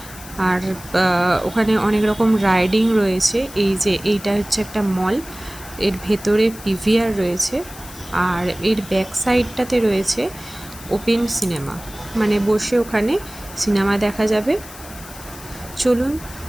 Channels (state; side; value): noise; left; hiss, 16 dB below the sound